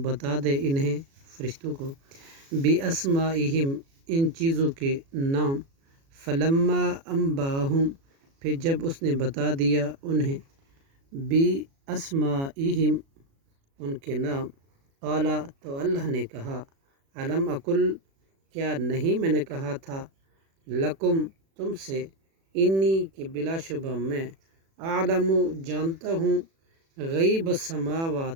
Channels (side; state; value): left; late; 36 ms